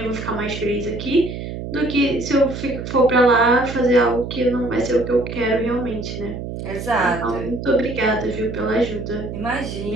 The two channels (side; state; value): right; noise; hum, 7 dB below the sound